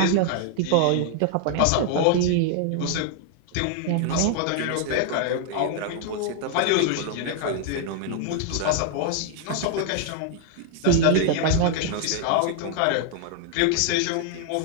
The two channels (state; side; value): different; both; correlation 0.00